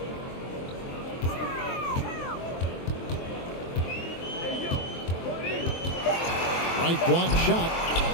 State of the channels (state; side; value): late; right; 23 ms